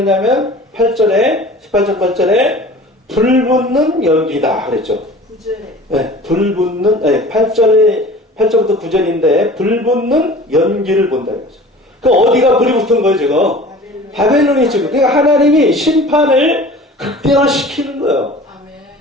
18장 8절에 불붙는 연기다 그랬죠. 9절에 네, 불붙는 8절에 8절부터 9절인데 불 붙는 연기를 본다 이거죠. 그 어디가 불이 붙은 거예요 지금? 바벨론이 지금. 그러니까 하나님이 심판을 극대화시키는 거예요.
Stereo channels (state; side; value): normal; both; correlation 0.43